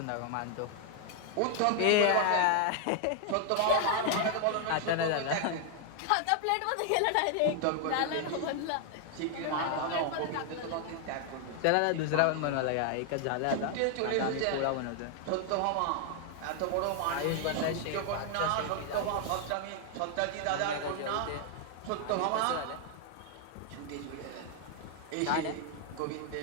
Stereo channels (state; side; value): different; both; correlation 0.00